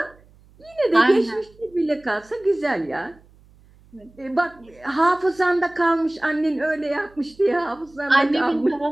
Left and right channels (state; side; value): noise; right; hum, 28 dB below the sound